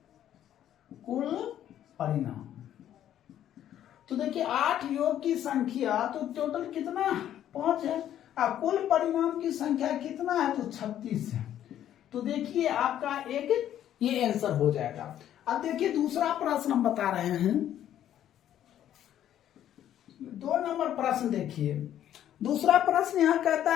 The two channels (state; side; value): quieter; right; 11.1 dB